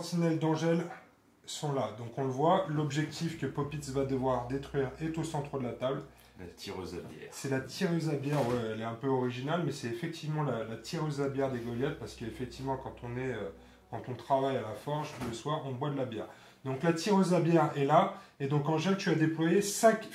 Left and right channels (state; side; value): identical; both; correlation 1.00